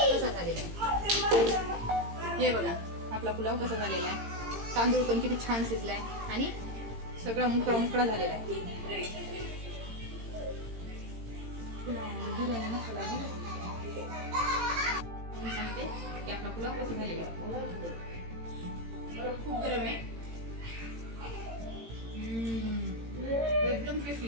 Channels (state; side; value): late; left; 18 ms